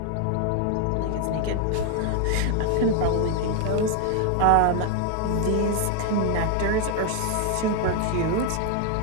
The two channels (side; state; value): both; different; correlation 0.00